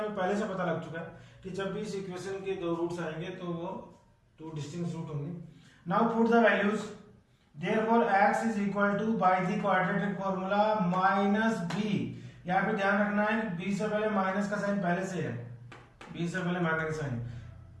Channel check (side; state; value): both; identical; correlation 1.00